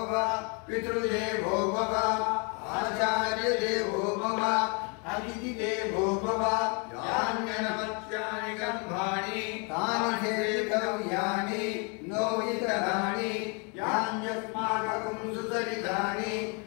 पितृदेवो भव आचार्यदेवो भव अतिथिदेवो भव यान्यनमत्यानि कर्माणि तानि हेतव्यानि नो इतराणि यान्यस्माकं सुचरितानि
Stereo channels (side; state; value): right; quieter; 33.1 dB